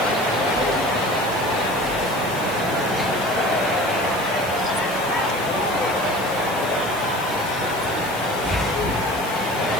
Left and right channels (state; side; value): noise; left; hiss, 14 dB below the sound